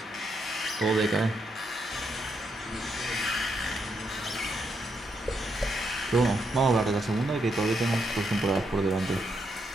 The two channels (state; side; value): normal; both; correlation 0.79